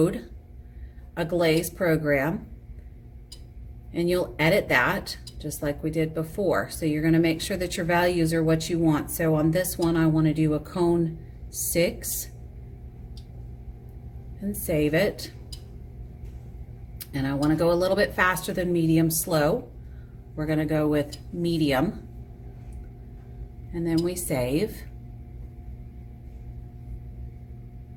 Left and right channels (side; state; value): both; identical; correlation 1.00